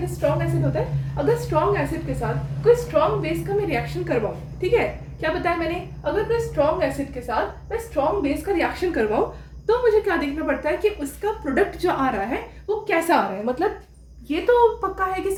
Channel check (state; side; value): identical; both; correlation 1.00